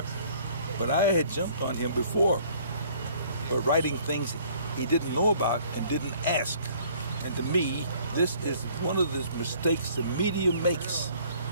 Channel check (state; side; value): inverted; both; correlation -0.57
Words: but I had jumped on him before for writing things he didn't know about and didn't ask. And to me, this is one of the mistakes the media makes.